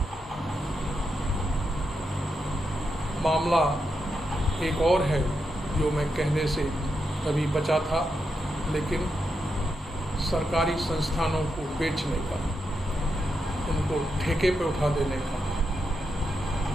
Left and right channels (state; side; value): normal; both; correlation 0.85